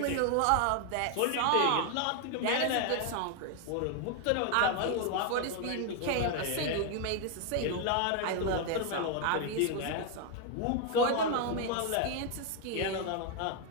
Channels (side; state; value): both; different; correlation 0.00